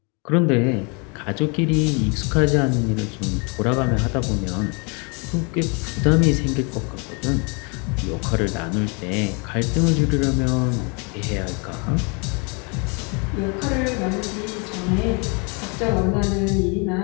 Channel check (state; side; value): quieter; right; 33.3 dB